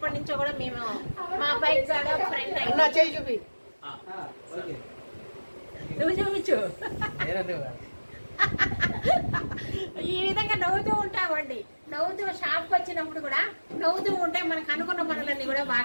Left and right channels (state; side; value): inverted; both; correlation -1.00